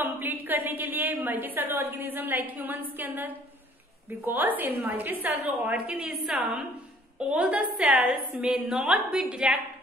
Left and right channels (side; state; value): both; normal; correlation 0.57